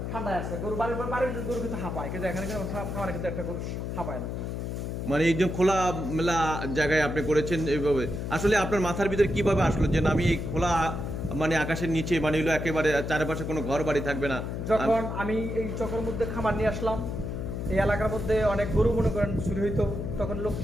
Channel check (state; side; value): noise; left; hum, 4 dB below the sound